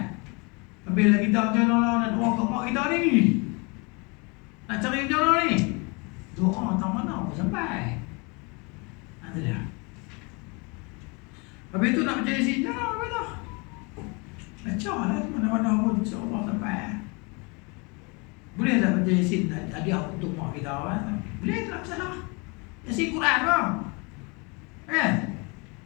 Bila kita macam mana nak doa kat mak kita ni, nak cari macam mana ni, doa tak mana pun sampai. Ada dia. Habis tu nak baca Yasin, jangan apa tu. Baca lah mana-mana pun insya-Allah sampai. Boleh tak baca Yasin hadiah untuk mak kita kan? Boleh tak salah. Yasin Quran bang. Kan?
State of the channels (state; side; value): quieter; right; 30.1 dB